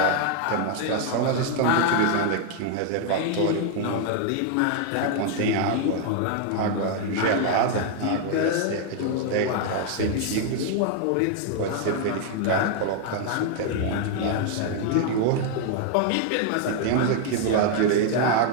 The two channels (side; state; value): both; different; correlation 0.00